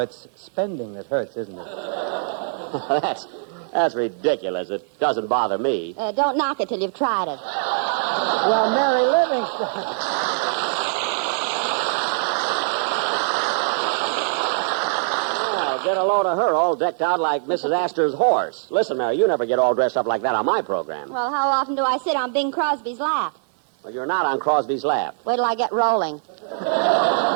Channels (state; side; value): silent; left; digital silence